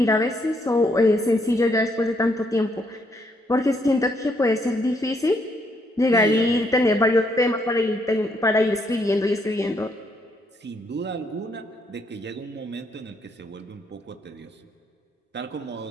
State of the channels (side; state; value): both; normal; correlation 0.73